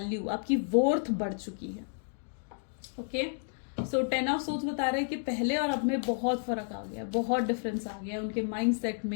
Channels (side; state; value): right; silent; 57 dB below the other